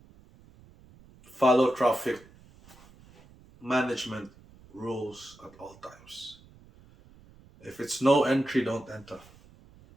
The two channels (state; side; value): noise; right; rumble, 25 dB below the sound